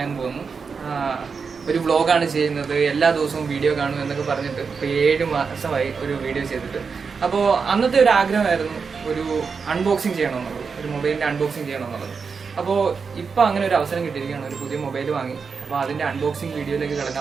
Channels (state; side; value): quieter; left; 5.4 dB